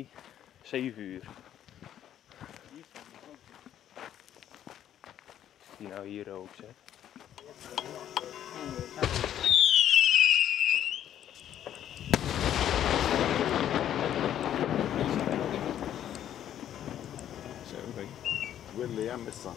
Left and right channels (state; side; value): quieter; right; 10.7 dB